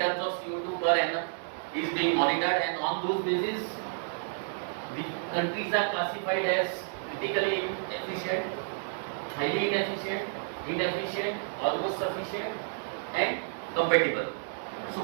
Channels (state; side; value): silent; left; digital silence